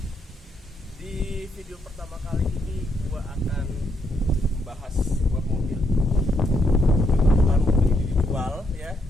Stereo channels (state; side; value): normal; both; correlation 0.76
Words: Di video pertama kali ini gua akan membahas sebuah mobil. Kebetulan mobil ini dijual ya.